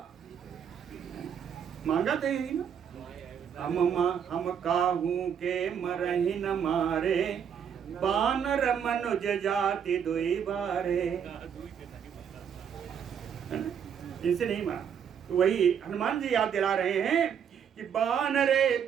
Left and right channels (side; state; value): left; quieter; 7.9 dB